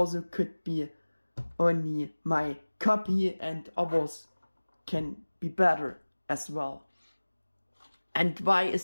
could be only my copy and others can be better as well. And why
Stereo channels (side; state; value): both; inverted; correlation -1.00